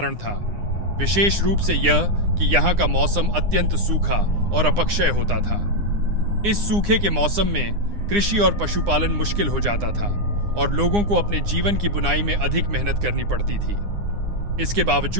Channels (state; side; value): late; left; 9.8 ms